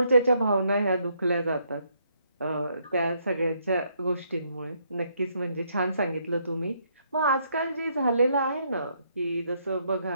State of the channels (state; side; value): inverted; both; correlation -0.72